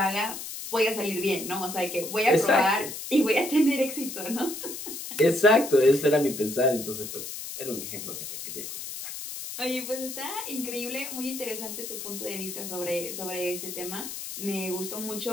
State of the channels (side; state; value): left; noise; hiss, 8 dB below the sound